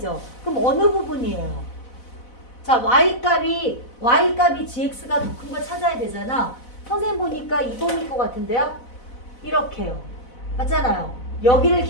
그럼 어느 부분이에요? 자, y값이 gx가 더 큰 거 찾아야 되잖아. 선생님 보니까 이 범위일 것 같은데요? 이렇게요. 맞잖아요. 여기를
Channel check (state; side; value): late; right; 4.0 ms